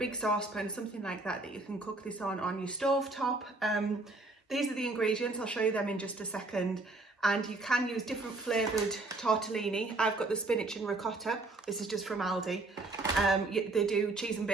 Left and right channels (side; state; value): left; quieter; 3.1 dB